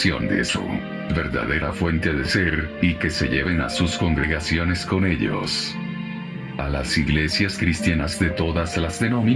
de su verdadera fuente de ser, y que se lleven a sus congregaciones con ellos. A las iglesias cristianas de todas las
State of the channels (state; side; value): identical; both; correlation 1.00